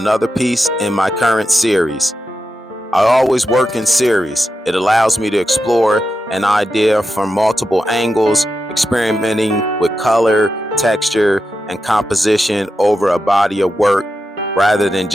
piece in my current series. I always work in series. It allows me to explore an idea from multiple angles, experimenting with color, texture, and composition over a body of work rather than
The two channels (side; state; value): both; normal; correlation 0.89